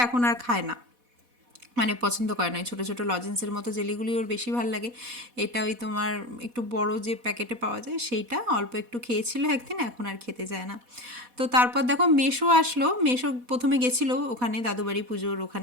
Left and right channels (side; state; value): left; late; 4.1 ms